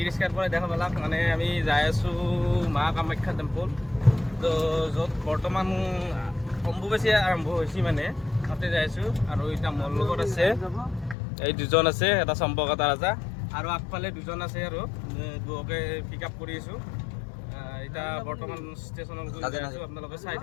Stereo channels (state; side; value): drops out; right; at 11.2 s